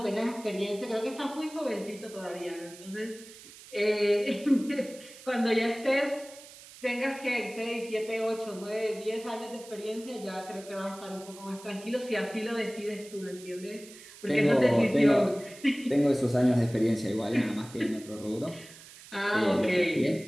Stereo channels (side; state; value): right; noise; hiss, 18 dB below the sound